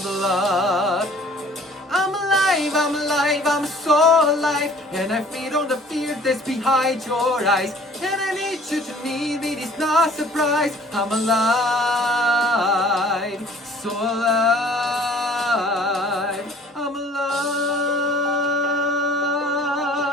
blood. I'm alive, I'm alive, I'm so alive, and I feed on the fear that's behind your eyes. And I need you to need me, it's not a surprise. I'm alive, so alive.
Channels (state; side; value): normal; both; correlation 0.52